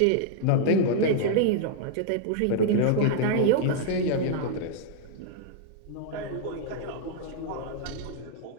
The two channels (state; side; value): different; both; correlation -0.01